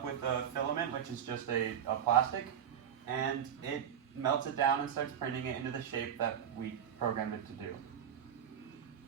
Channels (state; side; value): quieter; left; 8.9 dB